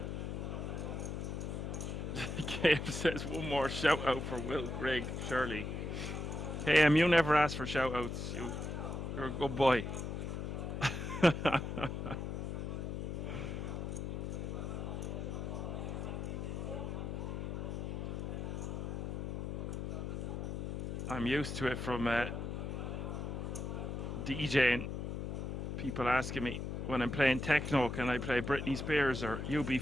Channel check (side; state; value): left; noise; hum, 4 dB below the sound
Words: KM says one more shout out for Will Grigg, surely. KM, you never ask for shout outs. You're a good boy. I'm used to it from DJing. People asking me when I'm playing techno, can I play Britney Spears or